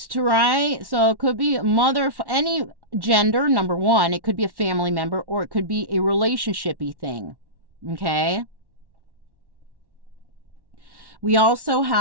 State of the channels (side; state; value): left; late; 1.1 ms